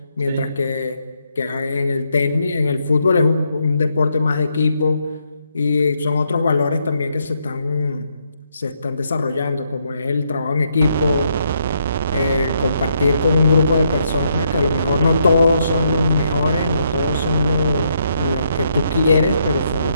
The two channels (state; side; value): inverted; both; correlation -0.76